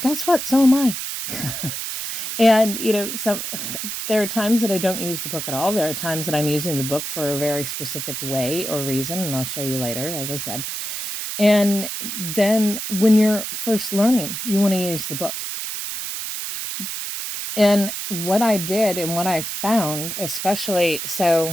what? So am I. And, there are times that I don't use the book at all. There are times that I'm using the book for a very specific way or reason, and I'll show you later, as I said. And then when you're first learning, you want to use the book. And what I did and what I found, especially,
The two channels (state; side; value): noise; right; hiss, 5 dB below the sound